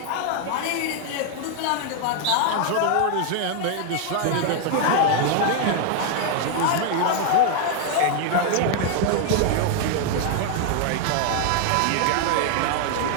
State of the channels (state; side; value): different; both; correlation 0.00